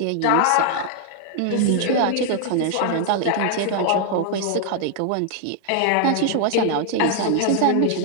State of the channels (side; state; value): both; different; correlation -0.01